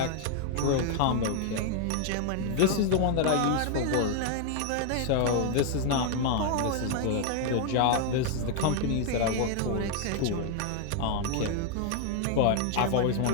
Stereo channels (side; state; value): both; different; correlation 0.00